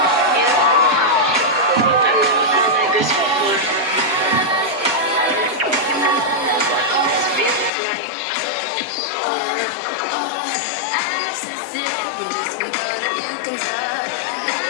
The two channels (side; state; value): right; drops out; at 7.7 s